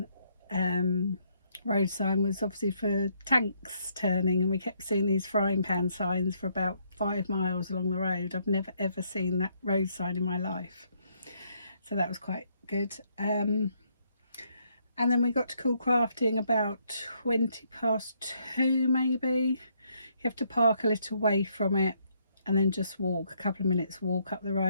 road sign was obviously for tanks turning, and we kept seeing these frying pan signs for about 5 miles along the road. I've never ever seen that road sign in my life, so that was quite good. And then we got to Coolcrafting about 2:20 maybe. You have to park a little way from it and then just walk a couple of minutes walk up the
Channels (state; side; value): inverted; both; correlation -0.72